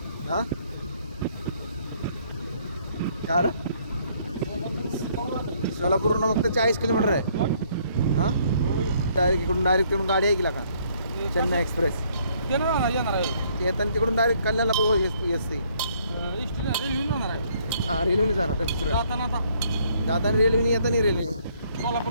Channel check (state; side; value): inverted; both; correlation -0.65